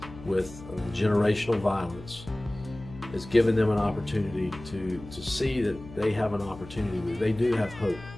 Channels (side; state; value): left; noise; hum, 16 dB below the sound